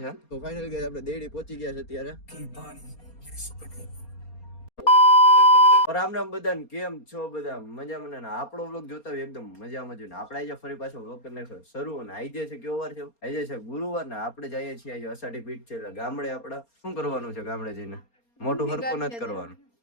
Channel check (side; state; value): right; late; 4.3 ms